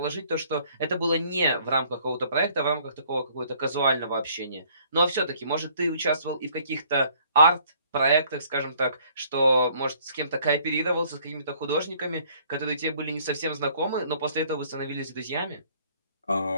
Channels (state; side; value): inverted; both; correlation -0.61